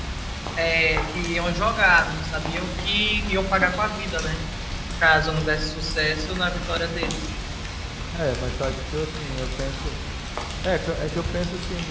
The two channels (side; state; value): both; identical; correlation 1.00